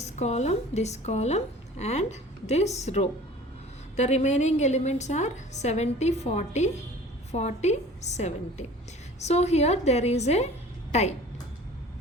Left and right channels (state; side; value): normal; both; correlation 0.45